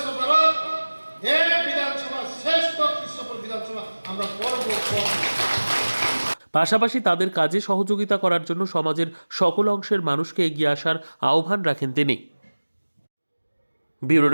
ভারত, এক বিধানসভা শ্রেষ্ঠ কৃষ্ণপুর বিধানসভা আমরা করব। পাশাপাশি তাদের কাজে সহযোগিতা করার জন্য সমাজের সকল অংশের মানুষকে এগিয়ে আসার আহ্বান রাখেন তিনি। Bureau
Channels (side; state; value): both; inverted; correlation -1.00